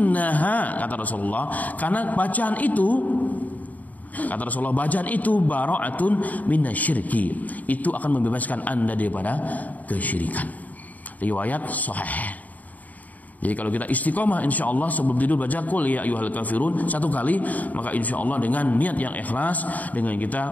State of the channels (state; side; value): late; right; 0.075 ms